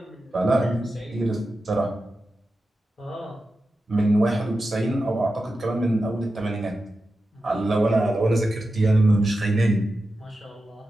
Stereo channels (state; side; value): normal; both; correlation 0.91